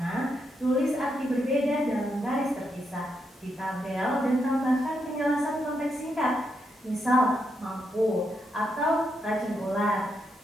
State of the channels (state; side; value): normal; both; correlation 0.81